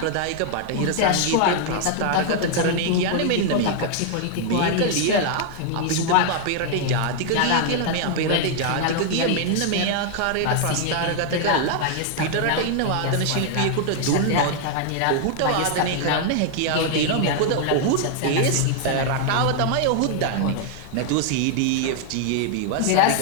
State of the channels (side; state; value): both; different; correlation 0.00